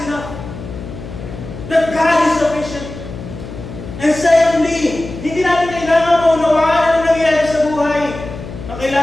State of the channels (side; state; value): left; noise; hum, 11 dB below the sound